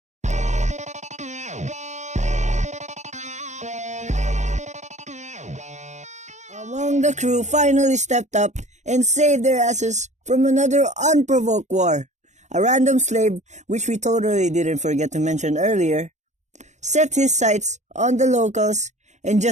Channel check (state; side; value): late; left; 0.34 ms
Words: Among the crew finally stepped up and saved their asses from another unprovoked war. A random slave, which we totally didn't forget to mention earlier, set his sights on the locals and